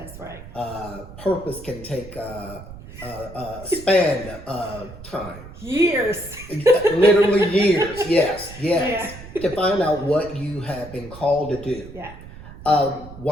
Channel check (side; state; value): right; noise; rumble, 15 dB below the sound